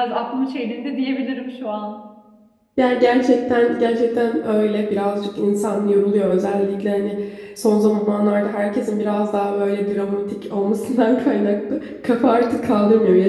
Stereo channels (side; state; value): both; identical; correlation 1.00